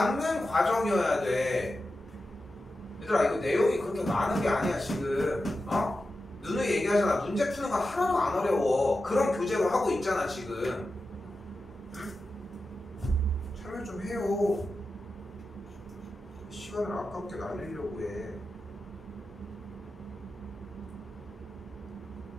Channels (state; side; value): normal; both; correlation 0.91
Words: 과정이어야 돼. 얘들아 이거 내용이 그렇게 많은 게 아니야 지금. 누누이 얘기하잖아. 문제 푸는 거 하나도 안 어려워. 그런 교재로 하고 있잖아 지금. 참여 좀 해요. 시간을 아깝게 날리려고 해.